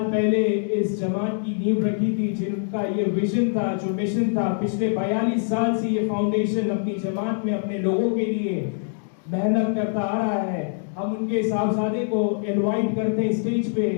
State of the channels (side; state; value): right; silent; digital silence